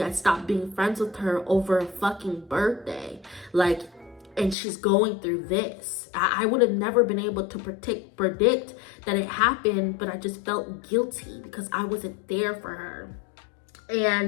I stopped being friends with her over a fucking birthday. Like, and she's going through this. I would have never been able to predict that it happened, but I just felt guilty because I wasn't there for her.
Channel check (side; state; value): right; drops out; at 4.5 s